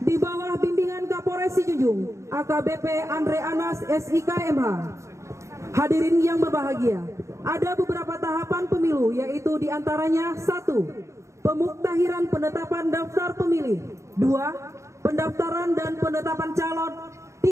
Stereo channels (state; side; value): late; left; 0.14 ms